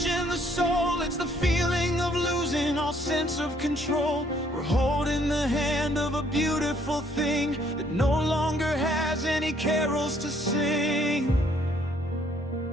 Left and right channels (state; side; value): normal; both; correlation 0.65